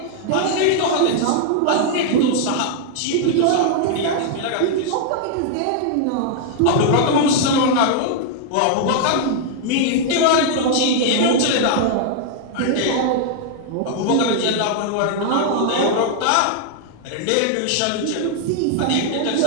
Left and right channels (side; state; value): both; different; correlation 0.00